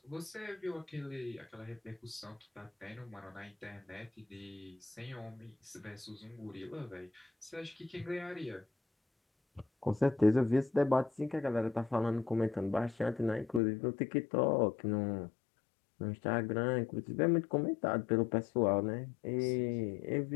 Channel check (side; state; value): right; drops out; at 13.6 s